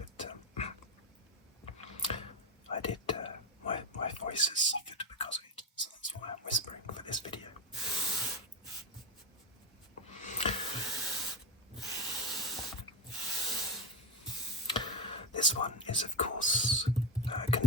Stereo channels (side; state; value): both; normal; correlation 0.15